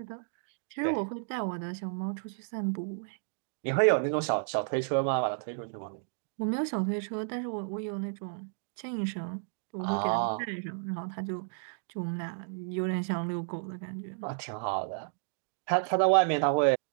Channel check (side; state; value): left; silent; digital silence